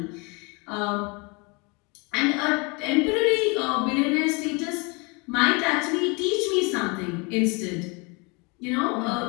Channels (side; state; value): right; quieter; 29.8 dB